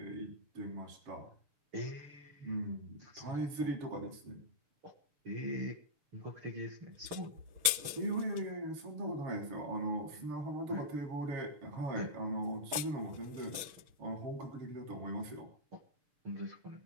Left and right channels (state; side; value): late; left; 6.8 ms